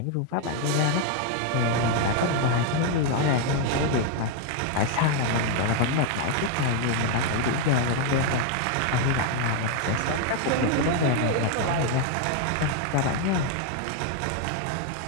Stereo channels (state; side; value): different; both; correlation 0.01